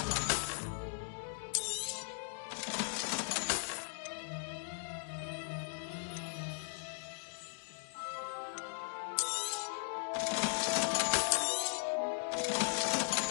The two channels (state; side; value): silent; right; digital silence